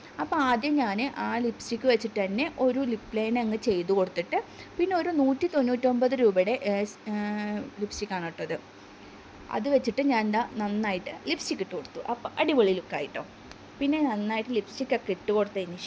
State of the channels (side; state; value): both; identical; correlation 1.00